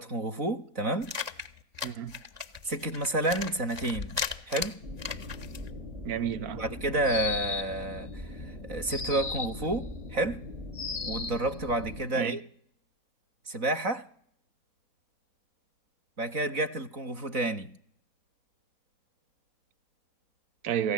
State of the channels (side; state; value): left; late; 4.0 ms